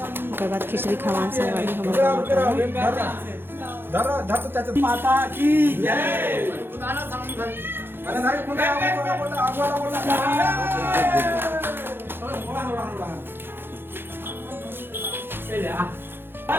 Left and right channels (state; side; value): late; left; 0.10 ms